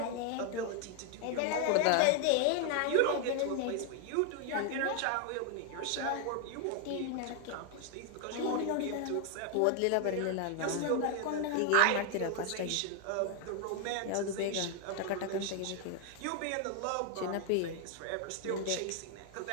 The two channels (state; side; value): different; both; correlation 0.00